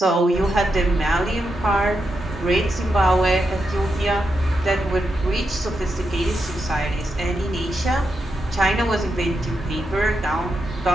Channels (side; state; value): both; normal; correlation 0.85